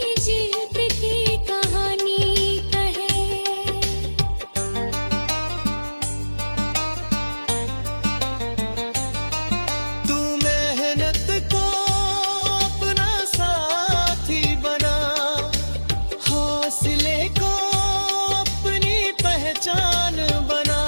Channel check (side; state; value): both; inverted; correlation -1.00